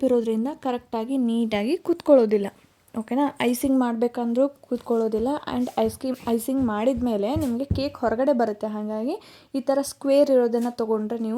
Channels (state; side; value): identical; both; correlation 1.00